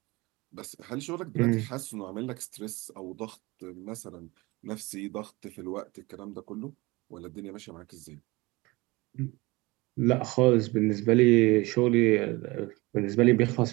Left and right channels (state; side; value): quieter; left; 22.9 dB